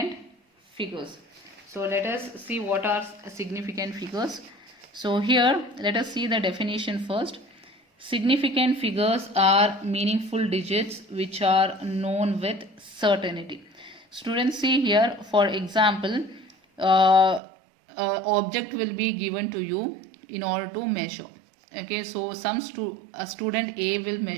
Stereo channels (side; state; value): left; drops out; at 17.4 s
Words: figures. So let us see what are significant figures. So here let us see the definition first. Significant figures are meaningful digits which are known with certainty. Students, see here, for example, object will be given to you in order to measure. Okay, so a student A will